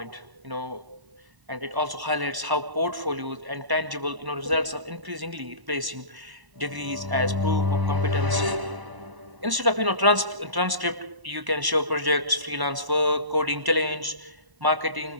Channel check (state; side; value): late; left; 1.0 ms